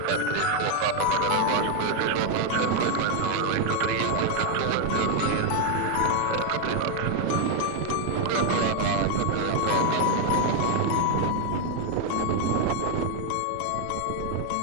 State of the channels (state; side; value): different; both; correlation 0.01